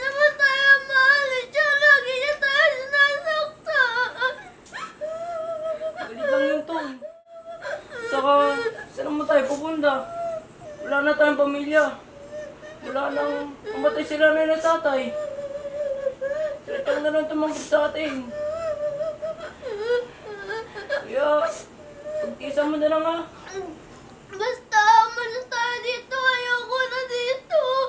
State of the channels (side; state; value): both; identical; correlation 1.00